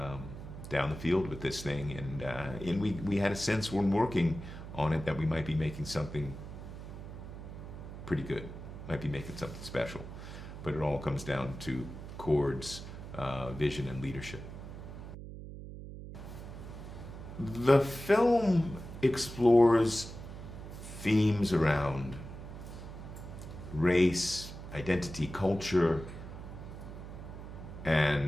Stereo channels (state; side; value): noise; right; hum, 11 dB below the sound